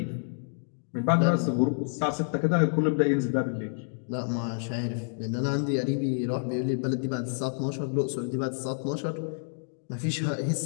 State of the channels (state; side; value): silent; right; digital silence